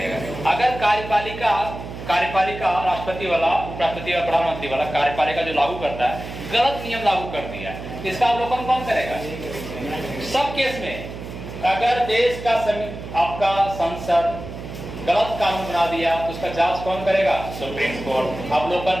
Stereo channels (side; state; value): right; noise; hum, 10 dB below the sound